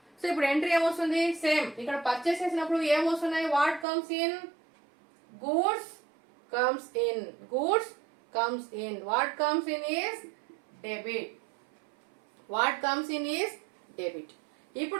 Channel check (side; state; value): left; drops out; at 3.9 s